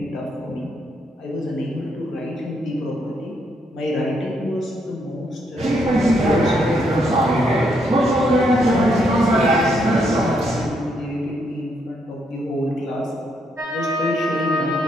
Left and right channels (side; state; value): both; normal; correlation 0.75